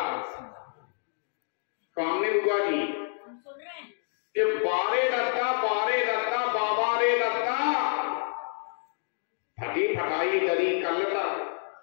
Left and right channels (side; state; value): right; silent; digital silence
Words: कामने बुआ जी, कि बारे रत्ता बाबा रे रत्ता, फटी फटाई दरी कलता।